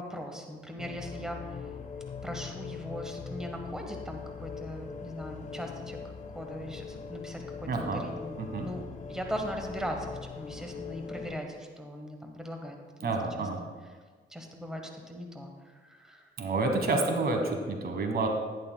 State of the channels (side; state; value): both; normal; correlation 0.49